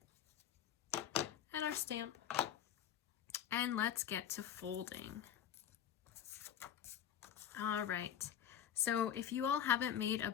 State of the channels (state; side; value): quieter; right; 9.9 dB